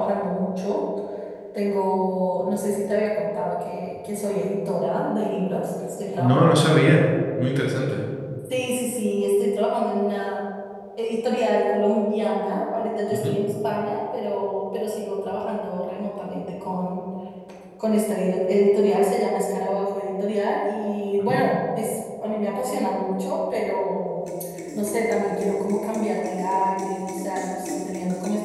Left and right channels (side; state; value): both; identical; correlation 1.00